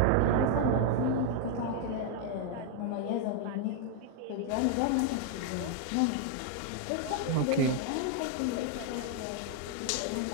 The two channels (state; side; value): different; both; correlation 0.00